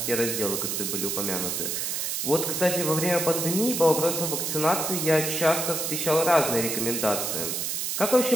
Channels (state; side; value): noise; right; hiss, 1 dB below the sound